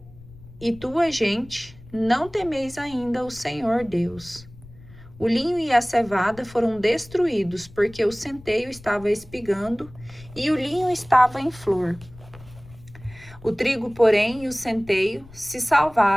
e tua gente não temeis ainda o Senhor Deus. O linho e a cevada foram destruídos, porque o centeio estava espigando e o linho estava em flor. O trigo, porém, e o centeio se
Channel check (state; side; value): noise; left; rumble, 21 dB below the sound